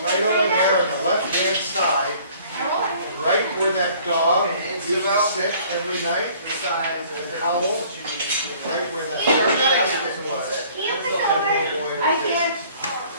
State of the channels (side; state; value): both; inverted; correlation -0.54